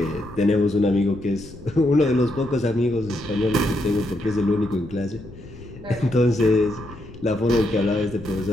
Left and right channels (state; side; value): noise; left; rumble, 17 dB below the sound